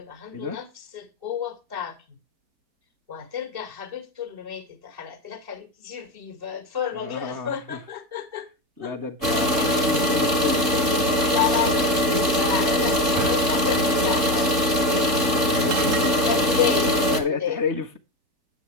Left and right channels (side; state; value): left; late; 3.7 ms